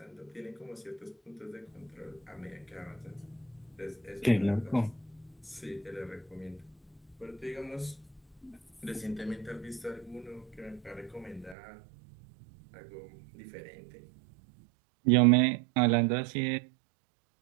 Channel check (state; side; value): drops out; left; at 11.6 s